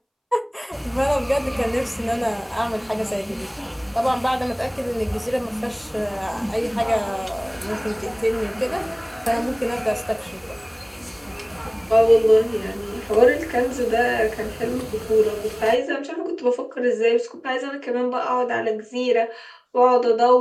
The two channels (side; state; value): both; identical; correlation 1.00